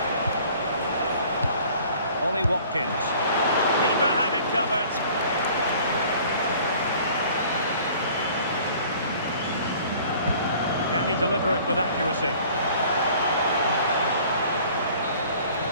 Ollie Watkins. Keeper had it covered. Can he deliver it with accuracy?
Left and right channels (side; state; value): both; inverted; correlation -0.51